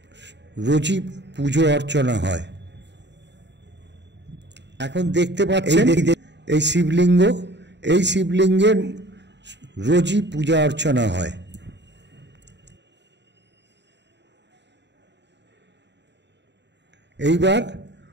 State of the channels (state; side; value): late; left; 0.51 ms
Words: রোজই পুজো অর্চনা হয়। এখন দেখতে পাচ্ছেন এই শিবলিঙ্গ, এই শিবলিঙ্গের রোজই পূজা অর্চনা হয়। এইবার